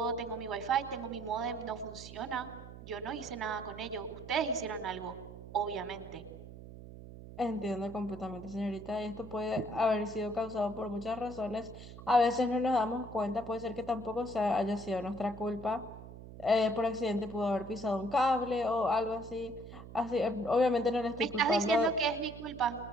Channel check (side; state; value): right; noise; hum, 14 dB below the sound